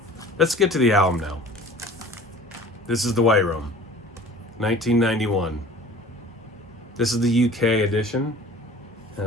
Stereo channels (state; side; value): normal; both; correlation 0.45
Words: Let's get to the album now. This is The White Room, 1991. This is the UK edition. It